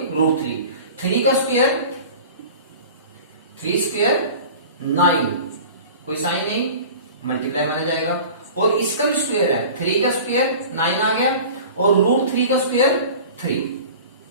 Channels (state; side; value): inverted; both; correlation -0.40